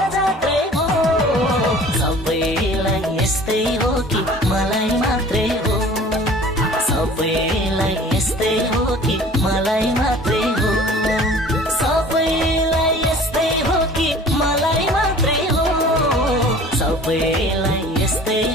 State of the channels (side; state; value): both; normal; correlation 0.46